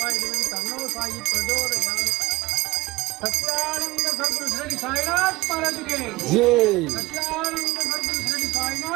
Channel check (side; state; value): left; quieter; 20.4 dB